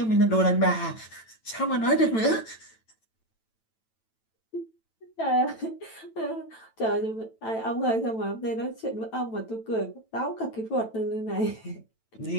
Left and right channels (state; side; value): late; right; 9.0 ms